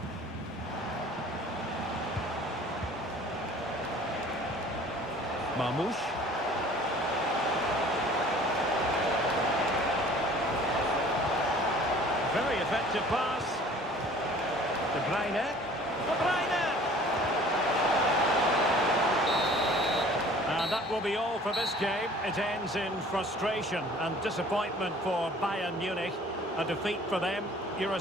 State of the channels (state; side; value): normal; both; correlation 0.50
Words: Mamouche. Very effective pass. De Bruyne. De Bruyne! And that will be all for this game. It ends in frustration and disappointment for Bayern Munich. A defeat for them. Your